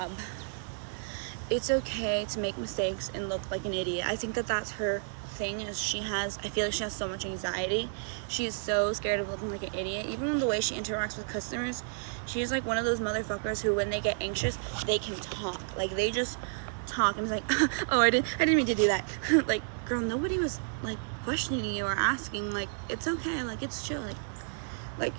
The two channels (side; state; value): left; silent; 57 dB below the other